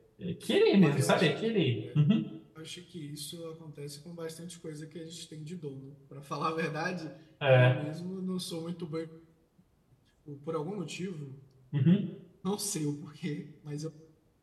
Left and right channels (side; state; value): both; identical; correlation 1.00